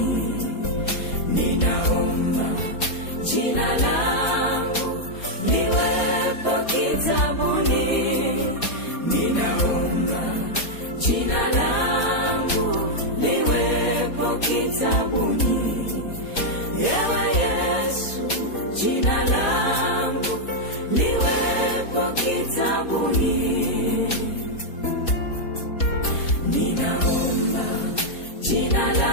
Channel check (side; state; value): right; late; 4.2 ms